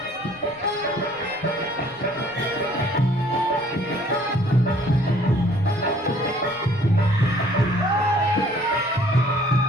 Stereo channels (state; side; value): noise; right; rumble, 29 dB below the sound